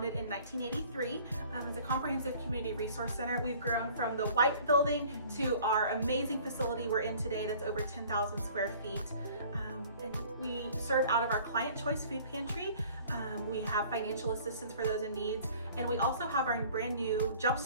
in 1983 as a comprehensive community resource center. We've grown from the white building to our amazing facility we're in today that's over 10,000 square feet. And we serve out of our Client Choice Food Pantry. We have financial assistance for those in needs. And we also have our brand new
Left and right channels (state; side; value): inverted; both; correlation -0.51